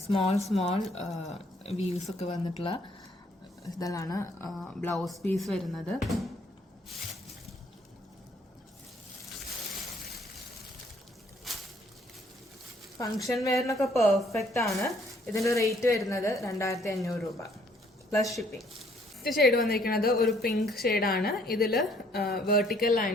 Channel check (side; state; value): both; normal; correlation 0.64